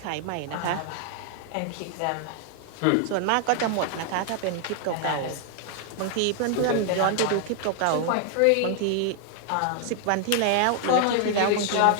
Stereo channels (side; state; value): both; different; correlation 0.00